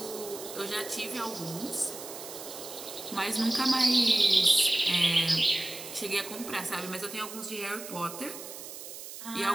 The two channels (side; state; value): right; noise; hiss, 11 dB below the sound